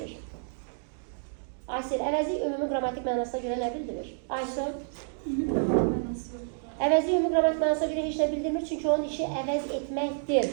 Aysel, əvəzlik ümumi qrammatik mənasına görə nə bildirir? Aysel? Əvəzlik ümumi qrammatik mənasına görə heç nə bildirmir, çünki onun işi əvəz etməkdir.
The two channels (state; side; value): silent; left; digital silence